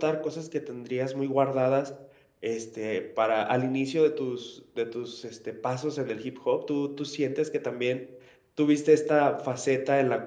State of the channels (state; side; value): identical; both; correlation 1.00